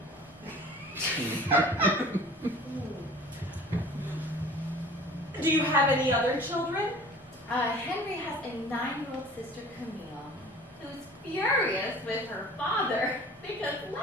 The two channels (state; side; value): normal; both; correlation 0.45